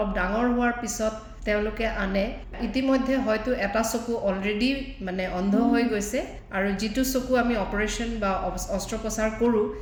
ডাঙৰ হোৱাৰ পিছত তেওঁলোকে আনে, ইতিমধ্যে হয়তো এটা চকু অলৰেডি মানে অন্ধ হৈ গৈছে, আৰু যিটো চকু আমি অপাৰেশ্যন বা অস্ত্ৰোপচাৰ কৰোঁ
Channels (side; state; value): both; identical; correlation 1.00